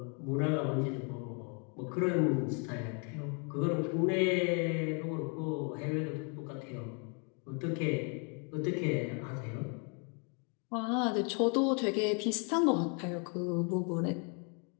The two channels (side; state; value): right; quieter; 37.7 dB